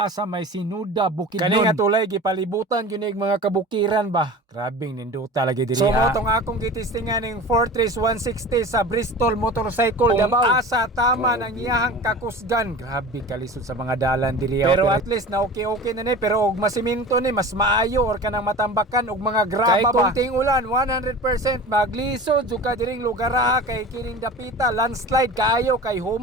sa may Sinuda, Bukidnon. Kani nga tulay gipalibutan gyud ning mga kabukiran ba. Grabing nindota lagi diriya. So mo tong akong gitistingan ning Fortress 160 sa Bristol Motorcycle Davao. Asa tama nang iyahang kakusgan. Grabe kalisod sa mga dalan diriya. Pero at least na okay na ni, pero og masiminto ni mas maayo or kanang matambakan og mga graba ba. Kay kunting ulan 100% maglisod jud ka diring lugar kay kining dapita landslide kaayo kay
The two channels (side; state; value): both; normal; correlation 0.36